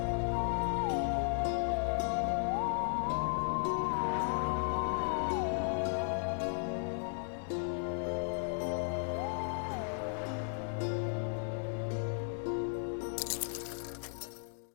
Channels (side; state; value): right; silent; digital silence